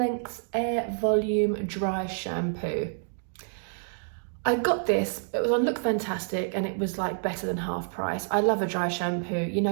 Air Volume Dry Shampoo. I got this, it was on Look Fantastic and it was like better than half price. I love a dry shampoo. You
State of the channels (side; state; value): left; silent; digital silence